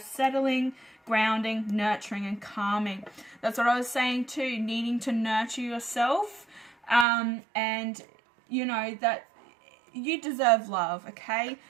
settling, grounding, nurturing, and calming. That's what I was saying too, needing to nurture yourself. And, you know, that you deserve love, okay?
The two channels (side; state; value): left; drops out; at 7.1 s